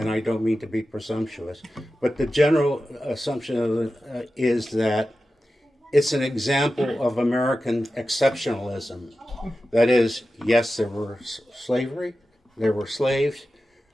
I don't mean to be presumptuous, but the general assumption is that it's an example of American exceptionalism. That is, yes, there were slavery, there were slaves,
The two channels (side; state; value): both; normal; correlation 0.93